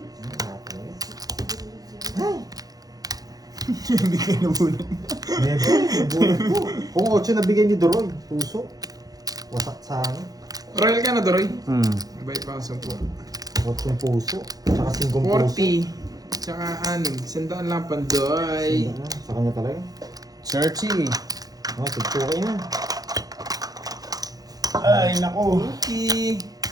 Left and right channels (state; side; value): late; left; 0.18 ms